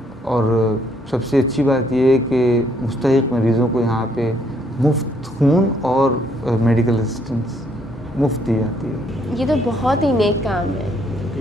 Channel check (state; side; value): normal; both; correlation 0.69